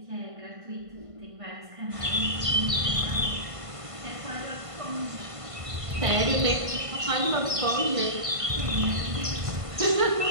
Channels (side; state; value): left; late; 1.5 ms